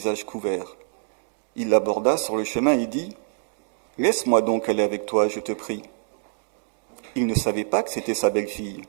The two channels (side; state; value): left; silent; digital silence